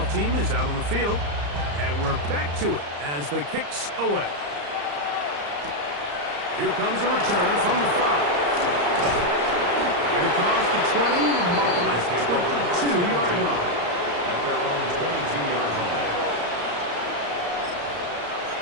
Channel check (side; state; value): left; late; 34 ms